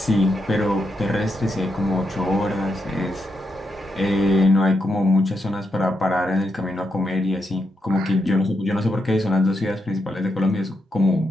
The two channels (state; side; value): normal; both; correlation 0.83